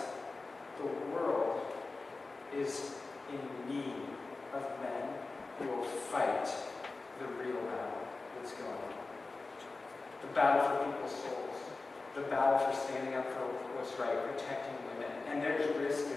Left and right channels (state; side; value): quieter; right; 3.6 dB